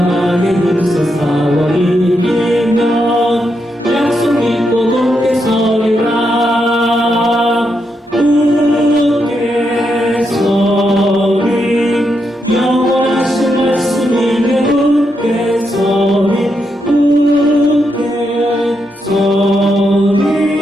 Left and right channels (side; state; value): both; normal; correlation 0.82